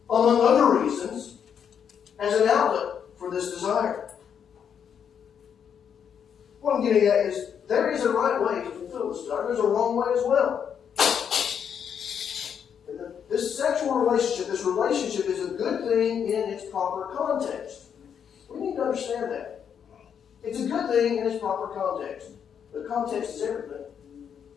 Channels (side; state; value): right; quieter; 7.9 dB